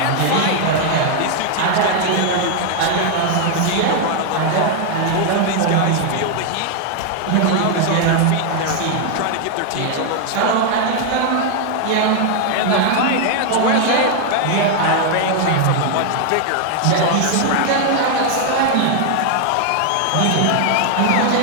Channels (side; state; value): both; different; correlation 0.00